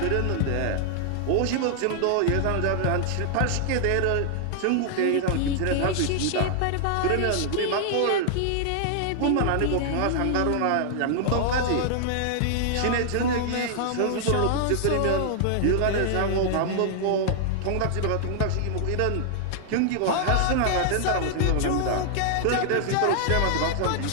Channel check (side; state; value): both; different; correlation -0.01